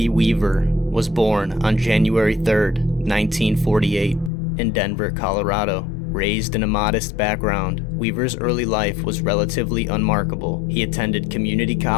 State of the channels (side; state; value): right; drops out; at 4.3 s